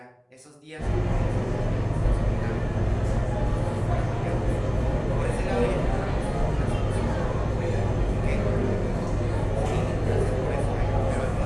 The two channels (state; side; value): identical; both; correlation 1.00